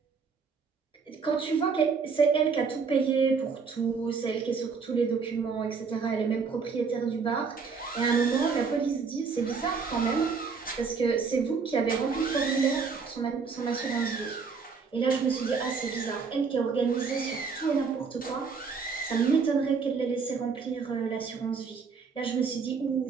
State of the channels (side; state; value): left; quieter; 5.3 dB